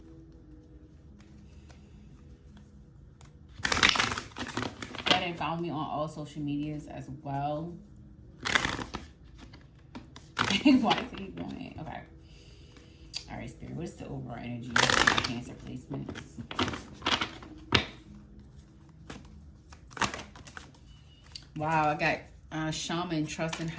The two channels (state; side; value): identical; both; correlation 1.00